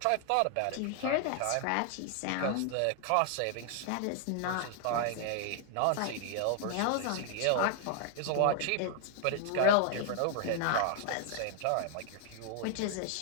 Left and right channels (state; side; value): different; both; correlation 0.00